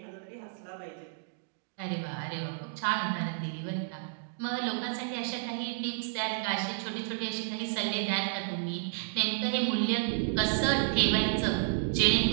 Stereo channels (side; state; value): left; silent; digital silence